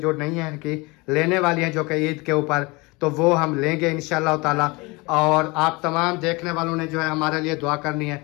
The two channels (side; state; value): right; quieter; 25.2 dB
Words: नहीं हैं कि लेने वाली हैं जो कि ईद के ऊपर, तो वो हम लेंगे इंशाअल्लाह ताला। और आप तमाम देखने वालों ने जो है हमारे लिए दुआ करनी है